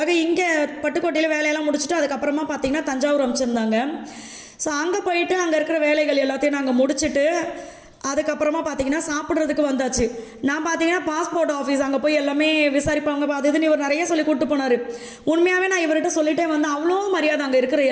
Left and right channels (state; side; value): identical; both; correlation 1.00